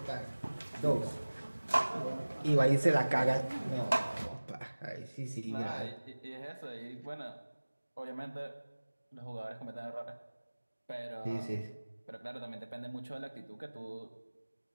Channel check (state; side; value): inverted; both; correlation -1.00